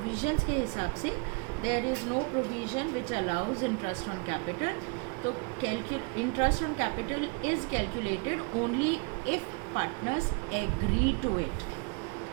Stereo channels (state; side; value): quieter; left; 32.3 dB